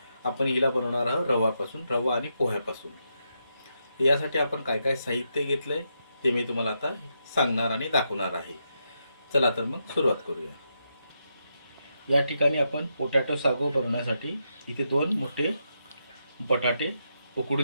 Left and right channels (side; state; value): both; inverted; correlation -0.83